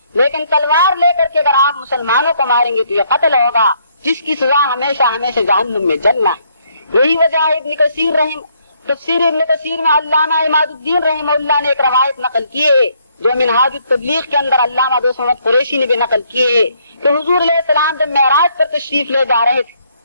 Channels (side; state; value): both; inverted; correlation -0.70